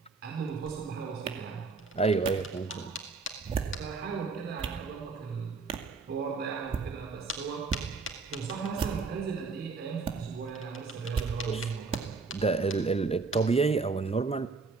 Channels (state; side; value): quieter; left; 4.3 dB